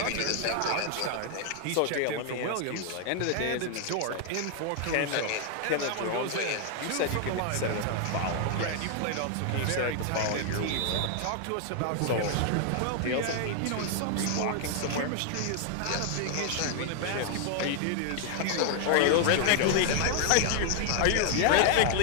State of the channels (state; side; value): different; both; correlation 0.00